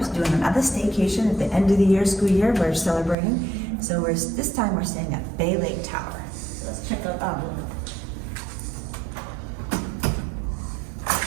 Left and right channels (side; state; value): left; drops out; at 3.2 s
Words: doing another staycation at the end of the year, school year. We're celebrating. So this time we're staying at Bay Lake Tower. So let's check out that one.